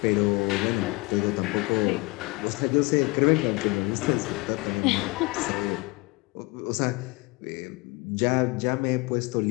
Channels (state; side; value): quieter; right; 25.8 dB